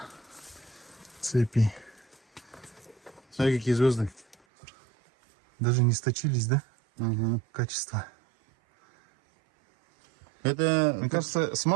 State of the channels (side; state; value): left; drops out; at 4.4 s